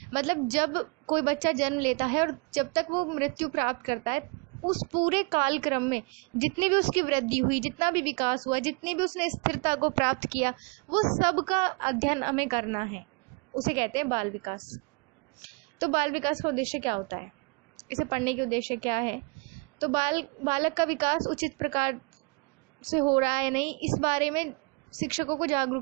मतलब जब कोई बच्चा जन्म लेता है और जब तक वो मृत्यु प्राप्त करता है, उस पूरे कालक्रम में जितनी भी उसकी वृद्धि हुई, जितना भी विकास हुआ, जितनी भी उसने स्थिरता को प्राप्त किया, वो सब का अध्ययन हमें करना है, उसे कहते हैं बाल विकास। तो बाल विकास का उद्देश्य क्या होता है, इसे पढ़ने के उद्देश्य क्या है? तो बालक का विकास उचित प्रकार से हो रहा है नहीं, इस बारे में शिक्षकों को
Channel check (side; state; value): left; quieter; 31.7 dB